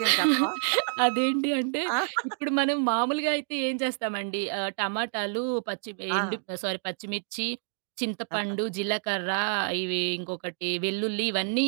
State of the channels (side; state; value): left; silent; digital silence